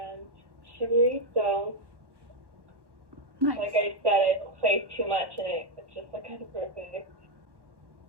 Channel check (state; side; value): late; left; 1.1 ms